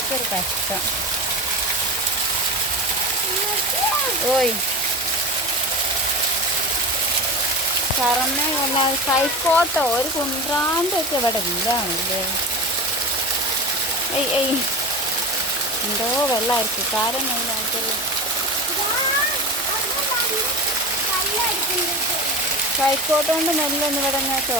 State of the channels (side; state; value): both; normal; correlation 0.28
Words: കഷ്ടം. ഓയ് തറന്നെ കൈക്കോട്ടോ ഒരു കുന്ത്രാൻ്റെ ഒക്കെ ഇവിടെ ഇല്ലാണല്ലേ. എന്തോ വെള്ളമായിരിക്കും കാരം മെയിനായിട്ടുള്ള. കൈക്കോട്ട് കൊണ്ട് നെല്ലൊന്നും ഇവിടെ ഞാൻ